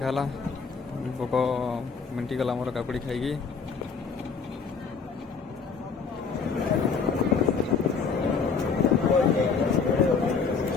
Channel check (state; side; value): quieter; right; 5.5 dB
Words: भोक मिंटिगला मोर काकुड़ी खाई।